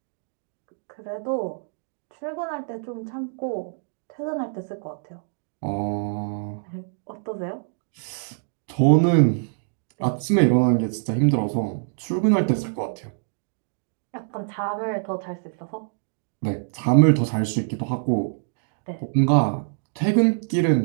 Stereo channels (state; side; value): silent; left; digital silence